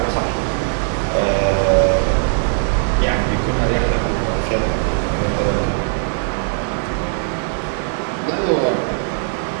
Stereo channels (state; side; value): silent; left; 66 dB below the other